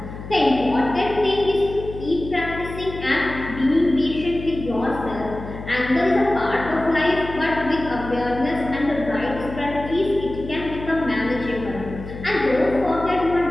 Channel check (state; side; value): noise; left; hum, 11 dB below the sound